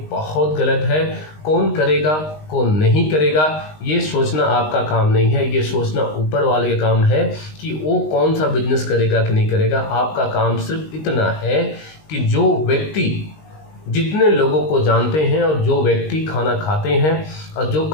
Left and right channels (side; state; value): right; late; 19 ms